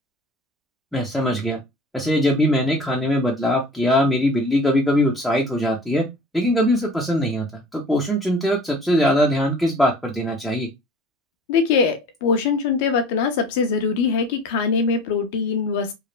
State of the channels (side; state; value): both; normal; correlation 0.43